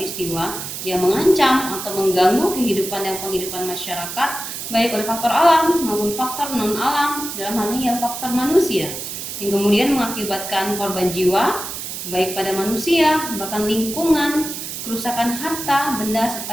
yang mengancam atau mengganggu kehidupan dan penghidupan masyarakat baik oleh faktor alam maupun faktor non alam, dalam hal ini adalah faktor manusia, yang kemudian mengakibatkan korban jiwa baik pada manusia, bahkan lingkungan, kerusakan harta, benda,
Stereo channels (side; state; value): right; noise; hiss, 7 dB below the sound